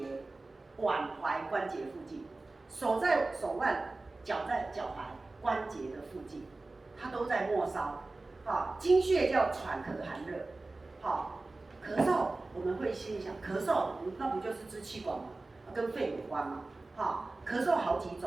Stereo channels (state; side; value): quieter; left; 3.2 dB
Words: 附近，手在手腕，脚在脚踝关节的附近，它都在末梢。好，经穴叫喘咳寒热。好，咳嗽我们会心里想，咳嗽那不就是支气管吗？跟肺有关吗？好，咳嗽好几